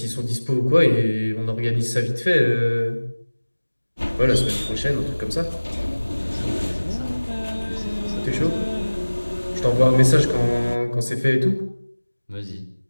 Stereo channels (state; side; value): inverted; both; correlation -1.00